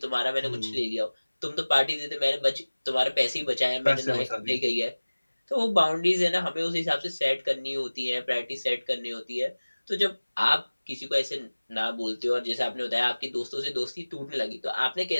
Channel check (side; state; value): both; inverted; correlation -1.00